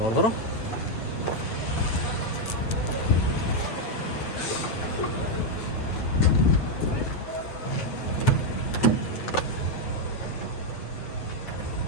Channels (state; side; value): late; right; 8.6 ms